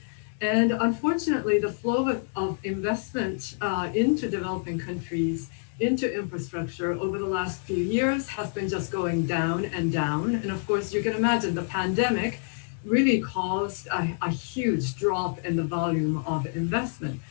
And unfortunately, the flow of investment into developing countries into infrastructure over the last few years has been just going down and down. And of course, you can imagine the pandemic really caused a huge drop in the volume of investment.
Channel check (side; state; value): right; silent; digital silence